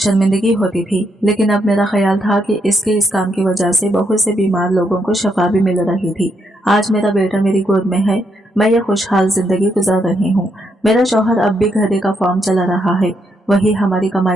होती थी, लेकिन अब मेरा ख्याल था कि इसके इस काम की वजह से बहुत से बीमार लोगों को शफा भी मिल रही थी। आज मेरा बेटा मेरी गोद में है, मैं ये खुशहाल जिंदगी गुजार रही हूँ। मेरा शौहर अब भी घरे का फॉर्म चला रहा है, वही हमारी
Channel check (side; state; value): both; normal; correlation 0.78